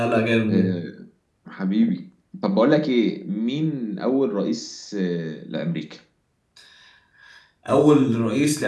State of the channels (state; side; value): identical; both; correlation 1.00